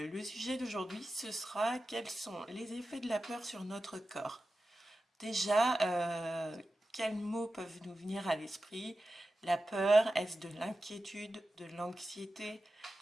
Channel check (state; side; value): normal; both; correlation 0.93